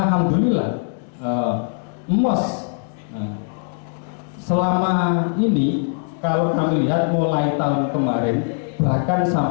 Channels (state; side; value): silent; right; 59 dB below the other